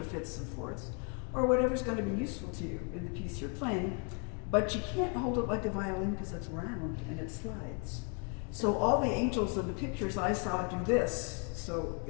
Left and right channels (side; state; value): right; quieter; 36.5 dB